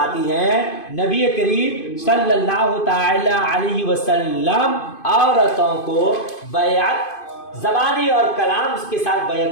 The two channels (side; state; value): right; late; 2.5 ms